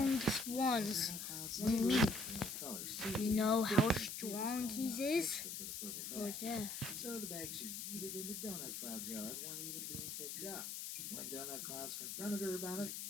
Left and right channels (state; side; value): noise; left; hiss, 6 dB below the sound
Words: ones. Donut Cloud's Mm. neighbor, named Color Susie, You know how didn't have strong the he small is? extra for the purple Right bag. there. So the bags she yeeted into Donut Cloud's yard weren't even being picked up. When Donut Clouds confronted her about it,